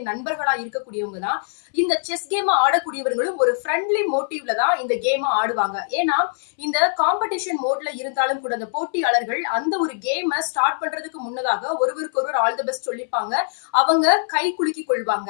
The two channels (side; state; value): right; silent; 64 dB below the other